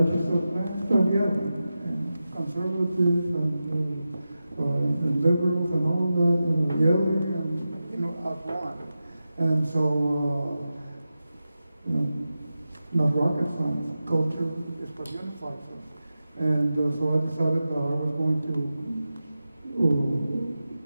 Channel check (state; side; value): inverted; both; correlation -0.93